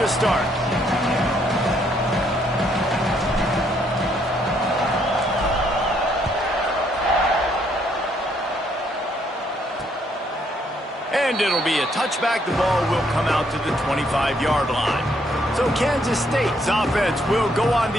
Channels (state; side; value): normal; both; correlation 0.70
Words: start. And it'll be a touchback. The ball will come out to the 25-yard line. So Kansas State's offense will go on